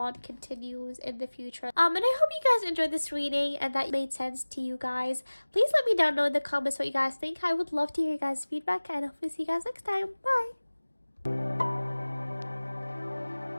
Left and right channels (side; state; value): both; inverted; correlation -1.00